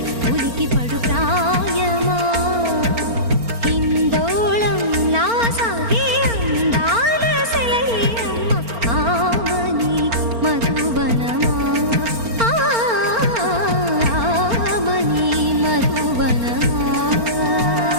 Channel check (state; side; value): late; left; 4.4 ms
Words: ఉలికి పడు ప్రాయమా హిందోళం నా సాగే అందాల సెలయేరమ్మ ఆమని మధువనమా ఆమని మధువనమా